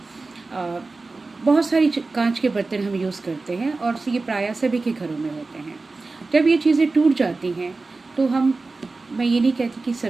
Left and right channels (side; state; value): left; quieter; 3.6 dB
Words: बहुत सारी कांच के बर्तन हम यूज़ करते हैं और ये प्रायः सभी के घरों में होते हैं। जब ये चीज़ें टूट जाती हैं तो मैं ये नहीं कहती कि